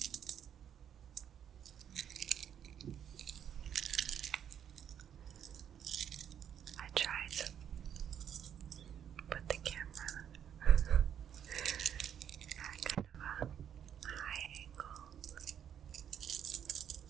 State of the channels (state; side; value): quieter; left; 9.1 dB